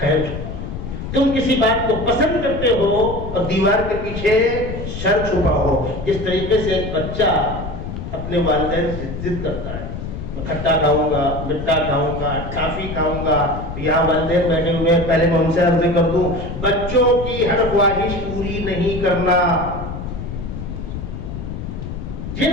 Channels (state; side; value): noise; left; rumble, 7 dB below the sound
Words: تم کسی بات کو پسند کرتے ہو اور دیوار کے پیچھے شر چھپا ہو. جس طریقے سے ایک بچہ اپنے والدین سے ضد کرتا ہے, میں کھٹا کھاؤں گا, مٹھا کھاؤں گا, ٹافی کھاؤں گا. یہاں والدین بیٹھے ہوئے ہیں, پہلے میں ان سے عرض کر دوں, بچوں کی ہر خواہش پوری نہیں کرنا. جن